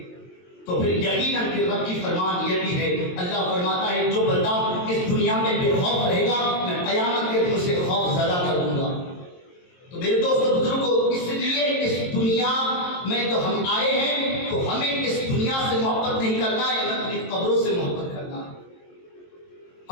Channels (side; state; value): right; late; 22 ms